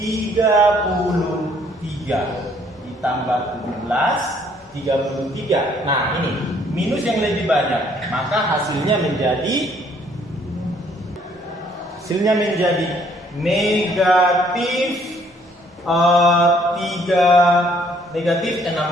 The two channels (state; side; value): normal; both; correlation 0.63